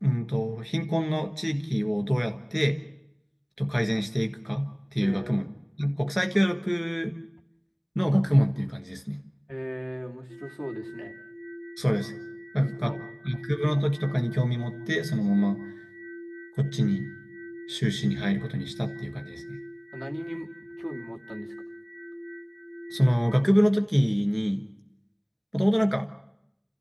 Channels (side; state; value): both; identical; correlation 1.00